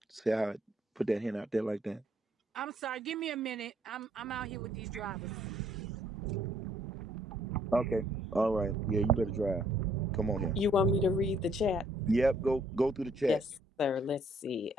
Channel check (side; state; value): both; normal; correlation 0.65